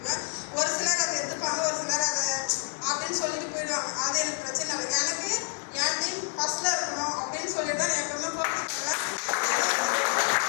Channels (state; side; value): silent; right; 59 dB below the other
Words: ஒரு சிலர் அதை எடுத்துப்பாங்க, ஒரு சிலர் அதை அப்படின்னு சொல்லிட்டு போயிடுவாங்க. அது எனக்கு பிரச்சனை இல்லை. எனக்கு என் டீம் ஃபர்ஸ்ட்ல இருக்கணும் அப்படின்னு சொல்லிட்டு தான் எப்பவுமே ஃபோக்கஸ் பண்ணுவேன்.